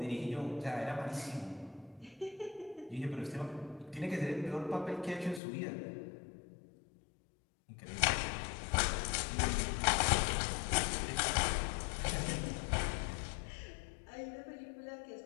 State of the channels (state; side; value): drops out; right; at 5.4 s